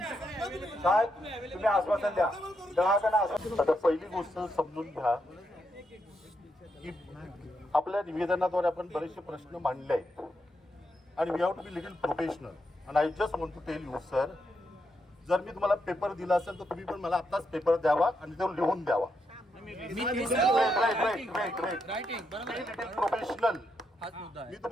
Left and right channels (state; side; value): normal; both; correlation 0.81